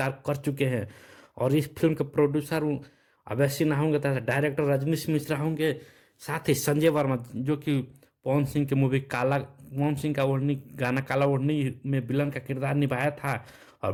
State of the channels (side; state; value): both; identical; correlation 1.00